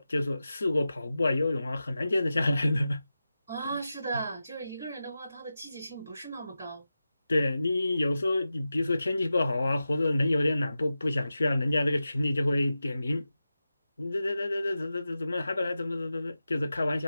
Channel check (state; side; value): inverted; both; correlation -0.93